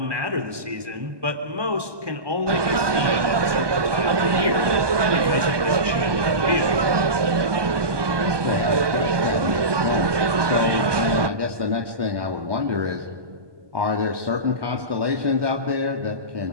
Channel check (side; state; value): left; late; 1.2 ms